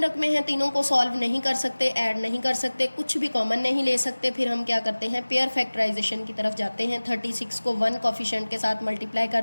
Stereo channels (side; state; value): both; inverted; correlation -1.00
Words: रकमें हैं, तीनों को सॉल्व नहीं कर सकते, ऐड नहीं कर सकते, कुछ भी कॉमन नहीं ले सकते। फिर हम क्या करते हैं, पेयर फैक्टराइजेशन की तरफ जाते हैं। 36 को 1 कोफिशिएंट के साथ मल्टीप्लाई कर